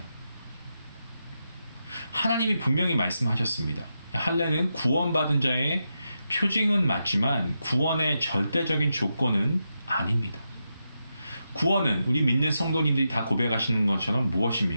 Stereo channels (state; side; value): inverted; both; correlation -0.86